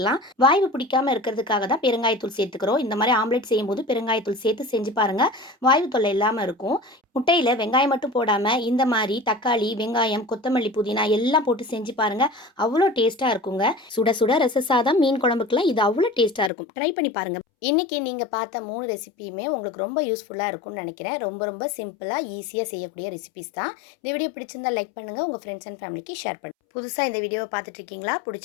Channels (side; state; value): right; drops out; at 16.5 s